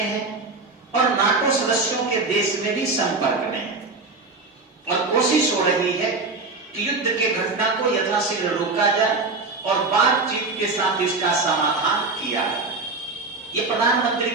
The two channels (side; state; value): left; quieter; 3.7 dB